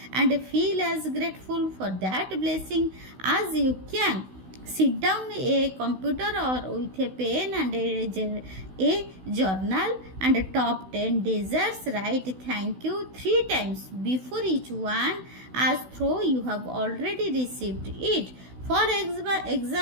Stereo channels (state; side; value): late; left; 16 ms